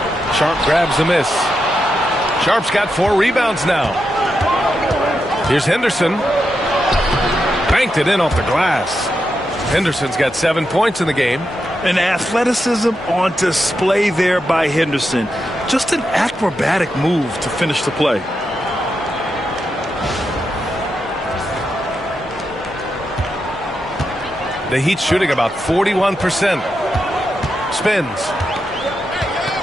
Sharp grabs the miss. Sharp's got 4 rebounds now. Here's Henderson. Banked it in off the glass. Henderson's got 7 points in the game. An athleticism on display there by Henderson. Just an acrobatic move to finish the play. The Heat shooting about 41%. Spins.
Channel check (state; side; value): normal; both; correlation 0.86